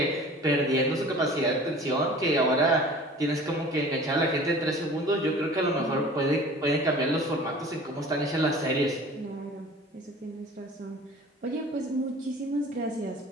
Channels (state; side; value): normal; both; correlation 0.44